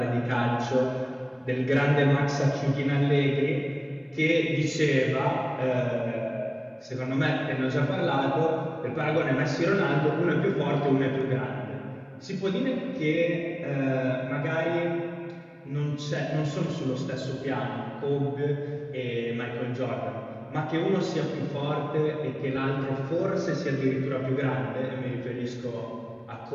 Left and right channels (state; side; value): identical; both; correlation 1.00